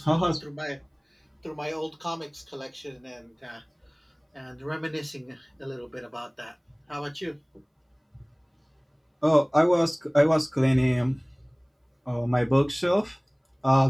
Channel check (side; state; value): both; identical; correlation 1.00